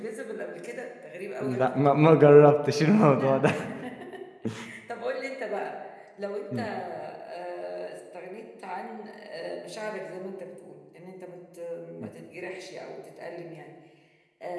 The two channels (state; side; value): identical; both; correlation 1.00